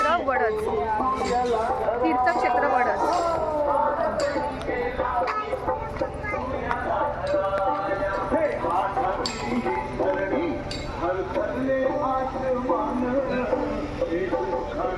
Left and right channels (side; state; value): both; identical; correlation 1.00